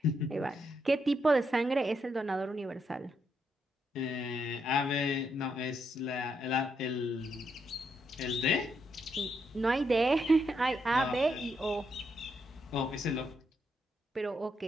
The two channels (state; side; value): normal; both; correlation 0.79